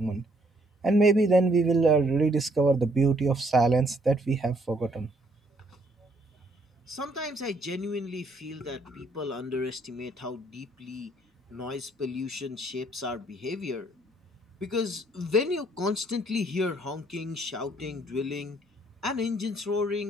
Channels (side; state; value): both; normal; correlation 0.67